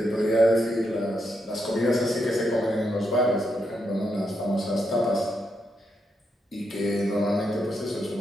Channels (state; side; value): normal; both; correlation 0.81